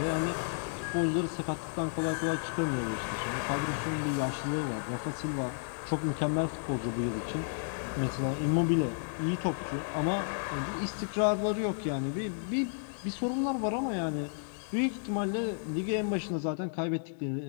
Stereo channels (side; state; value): right; silent; digital silence